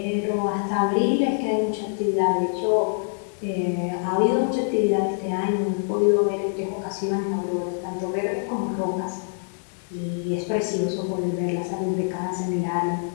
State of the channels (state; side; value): silent; right; 62 dB below the other